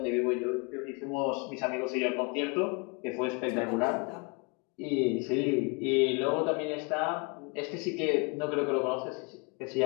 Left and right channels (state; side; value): quieter; right; 31.0 dB